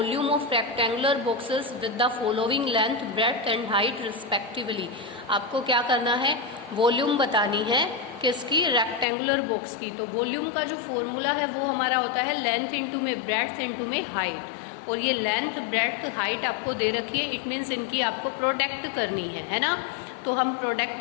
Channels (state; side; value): drops out; right; at 9.1 s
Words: of rectangular boxes with the following length, breadth and height respectively. आपको क्या करना है, वॉल्यूम बतानी है किसकी, रेक्टेंगुलर बॉक्स की। तो वॉल्यूम का जो फॉर्मूला है वो हमारा होता है लेंथ इंटू में ब्रेड्थ इंटू में हाइट। और ये लेंथ ब्रेड्थ हाइट आपको दे रखी है, इट मीन्स इनकी आपको प्रोडक्ट करनी है ना। तो हम